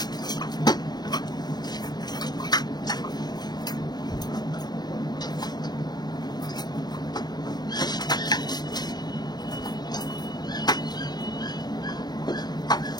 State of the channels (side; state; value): right; late; 0.20 ms